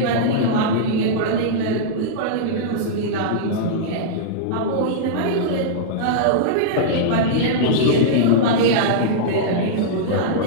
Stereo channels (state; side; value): different; both; correlation -0.03